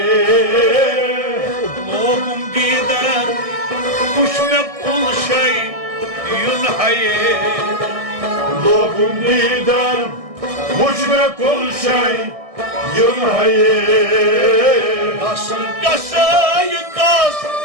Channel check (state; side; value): late; left; 1.6 ms